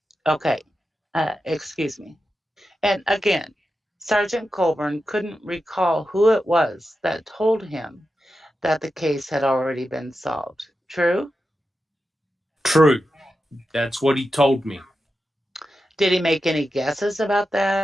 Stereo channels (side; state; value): both; normal; correlation 0.90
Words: Okay, excuse me. And again, Sergeant Colborn couldn't recall who it was that told him that the case had already been solved. True? True. That's what he told me. Did he make any guesses about